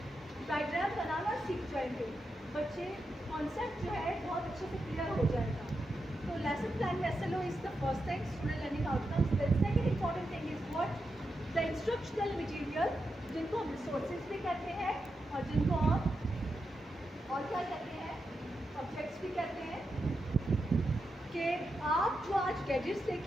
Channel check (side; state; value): both; normal; correlation 0.87